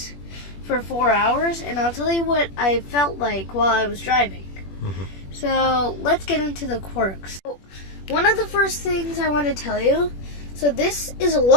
for 4 hours and I'll tell you what I felt like while I was driving. So let's get into the quirks. One of the first things I want to tell you, so this is a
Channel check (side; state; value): right; late; 21 ms